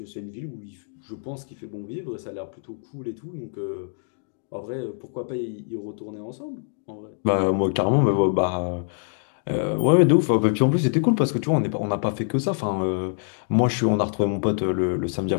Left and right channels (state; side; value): silent; right; digital silence